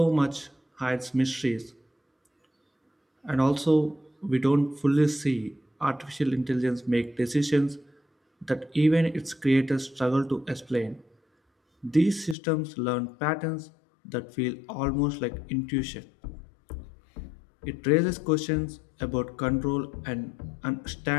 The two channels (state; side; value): drops out; right; at 12.4 s